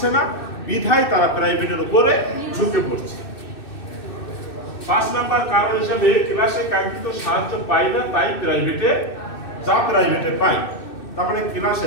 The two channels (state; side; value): late; right; 2.6 ms